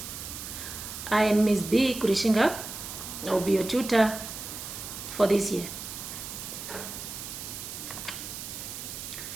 I am Ms. B. Kurishinga. I will be your tutor for this year.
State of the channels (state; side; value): noise; right; hiss, 8 dB below the sound